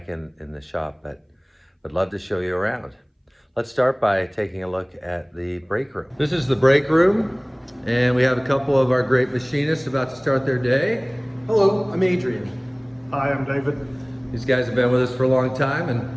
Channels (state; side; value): identical; both; correlation 1.00